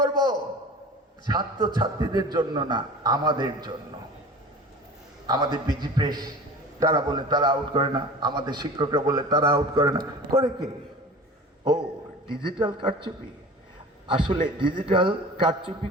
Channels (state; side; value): normal; both; correlation 0.39